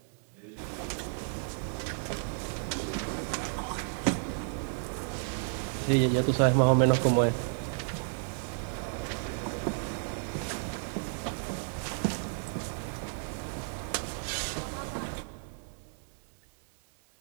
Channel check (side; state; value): left; silent; digital silence